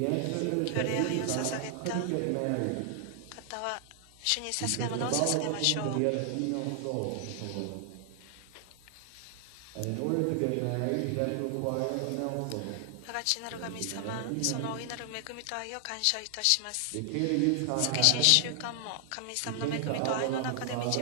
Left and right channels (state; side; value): different; both; correlation 0.00